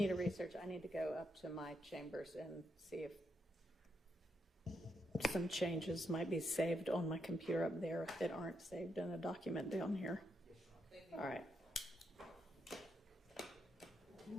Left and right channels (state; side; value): normal; both; correlation 0.80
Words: to research. I need to go up to my chambers and see if some changes might be saved on my computer up there that aren't saved in a document down here. All right.